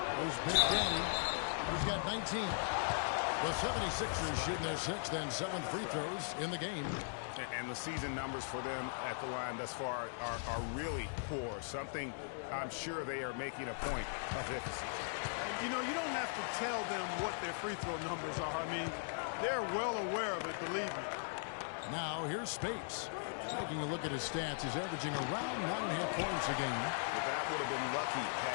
There's Big Daddy. He's got 19. The 76ers shooting their 6th and 7th free throws in the game. And the season numbers for them at the line thus far are really poor. Something I'm sure they are making a point of emphasis. You know, you don't have to tell them what their free throw numbers are. I mean, they're well aware of it, believe me. Now, here's Spates. Taking a look at his stats, he's averaging around 9.5 points a game. But that would have been lucky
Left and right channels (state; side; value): silent; right; digital silence